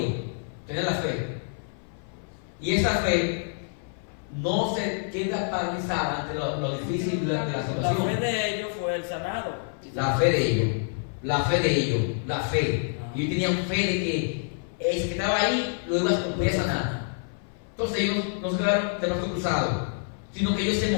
Tenían la fe. Y esa fe no se queda paralizada ante lo difícil de la situación. La fe de ellos fue el sanado. La fe de ellos. Y ellos tenían fe de que el que estaba ahí lo iba a sanar. Entonces ellos no se quedaron de brazos cruzados, sino que ellos se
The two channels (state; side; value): silent; right; 57 dB below the other